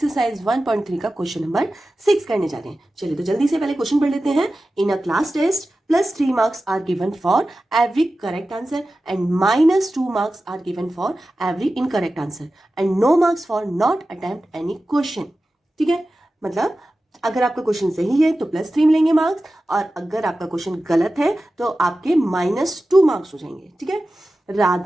1.3 का क्वेश्चन नंबर 6 करने जा रहे हैं। चलिए तो जल्दी से पहले क्वेश्चन पढ़ लेते हैं। In a class test +3 marks are given for every correct answer and -2 marks are given for every incorrect answer and no marks for not attempt any question. ठीक है, मतलब अगर आपका क्वेश्चन सही है तो +3 मिलेंगे मार्क्स, और अगर आपका क्वेश्चन गलत है तो आपके -2 मार्क्स हो जाएंगे। ठीक है,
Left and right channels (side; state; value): both; normal; correlation 0.94